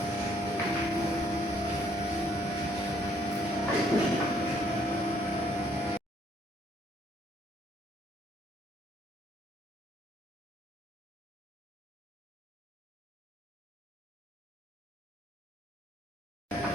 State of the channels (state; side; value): normal; both; correlation 0.66